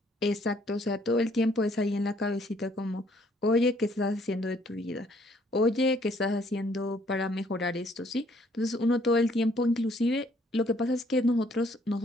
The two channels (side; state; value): both; normal; correlation 0.64